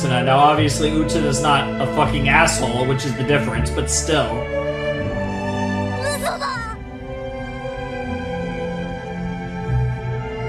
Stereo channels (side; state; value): both; identical; correlation 1.00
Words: Now obviously Utena's not a fucking asshole, which is the difference, but still. 嘘だ